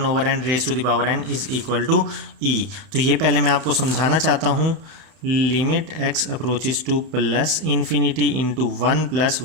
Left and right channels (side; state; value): left; late; 31 ms